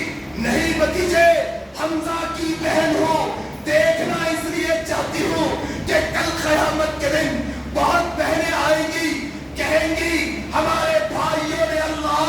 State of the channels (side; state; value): both; identical; correlation 1.00